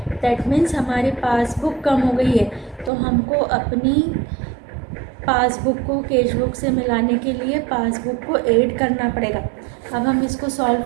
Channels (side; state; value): left; drops out; at 2.9 s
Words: दैट मीन्स हमारी पासबुक कम हो गई है, तो हमको अपनी पासबुक को कैश बुक से मिलाने के लिए पासबुक को ऐड करना पड़ेगा। अब हम इसको सॉल्व